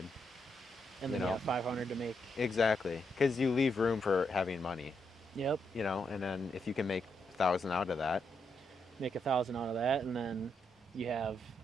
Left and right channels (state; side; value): normal; both; correlation 0.80